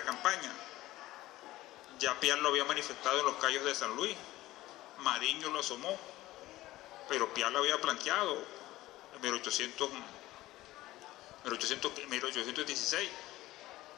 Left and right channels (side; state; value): right; quieter; 16.8 dB